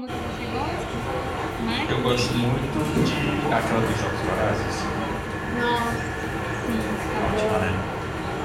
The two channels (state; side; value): identical; both; correlation 1.00